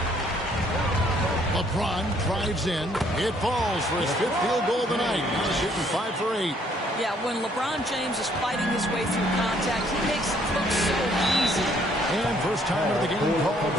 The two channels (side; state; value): both; normal; correlation 0.65